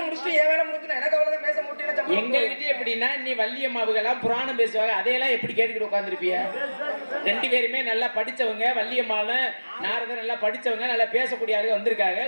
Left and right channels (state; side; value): inverted; both; correlation -1.00